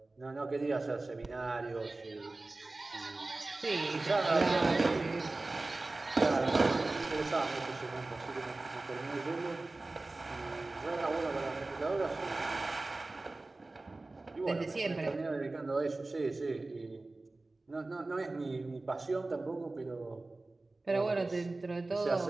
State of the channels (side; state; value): left; quieter; 3.1 dB